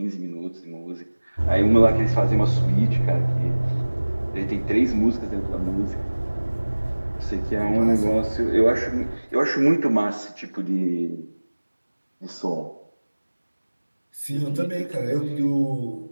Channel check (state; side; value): inverted; both; correlation -1.00